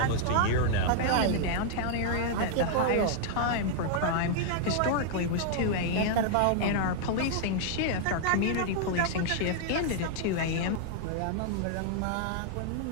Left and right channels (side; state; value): both; different; correlation -0.01